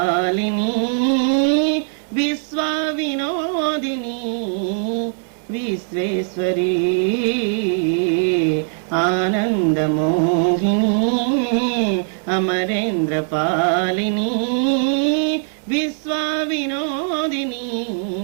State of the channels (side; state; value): left; silent; 61 dB below the other